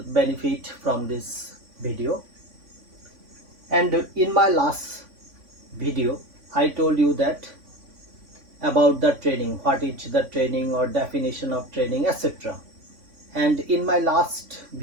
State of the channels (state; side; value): late; left; 3.5 ms